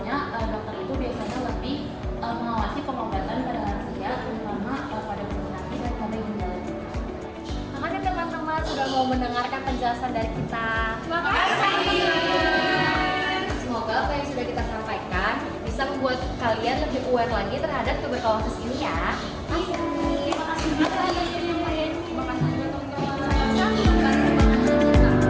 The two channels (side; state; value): both; identical; correlation 1.00